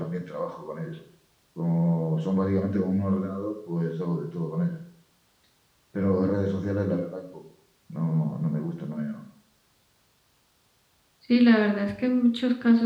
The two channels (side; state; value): both; identical; correlation 1.00